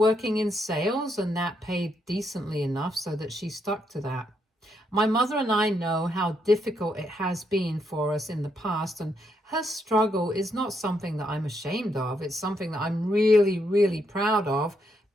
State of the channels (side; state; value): both; normal; correlation 0.77